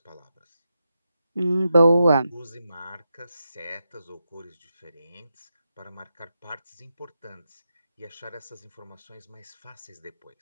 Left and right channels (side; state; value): both; inverted; correlation -0.87